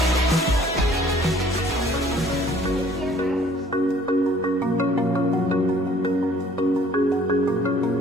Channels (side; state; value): both; normal; correlation 0.56